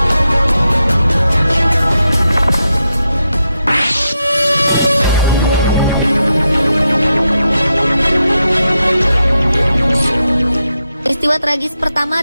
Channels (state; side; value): inverted; both; correlation -0.86